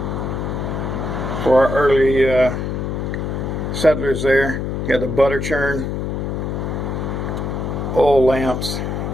for our early settlers there. You got the butter churn, oil lamps,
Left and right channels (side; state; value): left; noise; hum, 3 dB below the sound